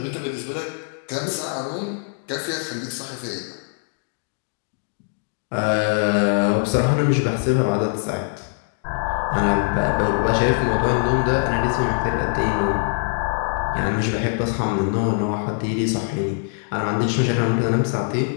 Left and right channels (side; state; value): right; silent; 57 dB below the other